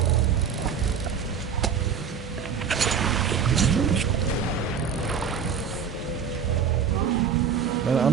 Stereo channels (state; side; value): quieter; left; 7.0 dB